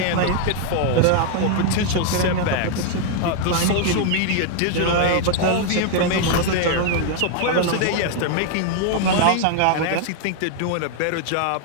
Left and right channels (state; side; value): different; both; correlation 0.00